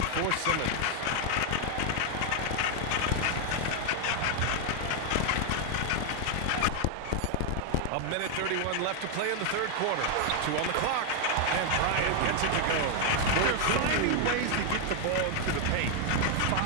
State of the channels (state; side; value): different; both; correlation 0.00